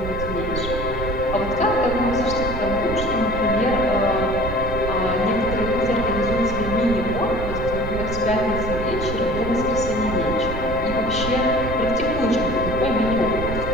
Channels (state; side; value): noise; right; rumble, 6 dB below the sound